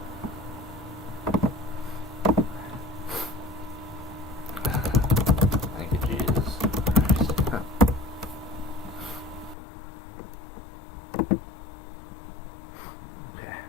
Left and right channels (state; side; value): drops out; right; at 9.6 s